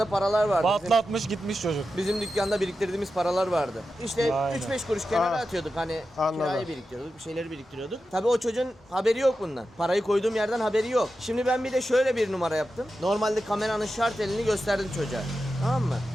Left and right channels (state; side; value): normal; both; correlation 0.91